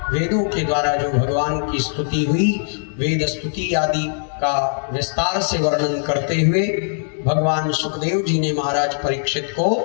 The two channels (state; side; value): silent; right; digital silence